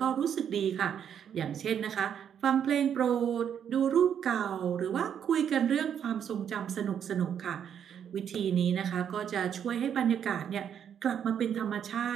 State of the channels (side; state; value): left; quieter; 8.6 dB